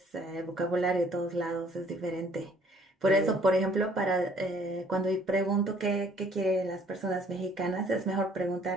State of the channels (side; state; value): both; normal; correlation 0.59